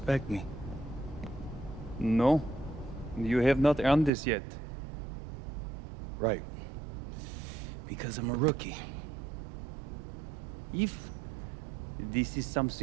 me. No, you have not earned this yet. Right. Because I'm a rookie. If this is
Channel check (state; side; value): drops out; left; at 4.1 s